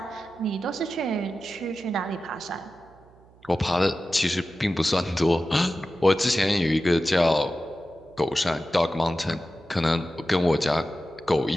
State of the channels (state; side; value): noise; right; hum, 27 dB below the sound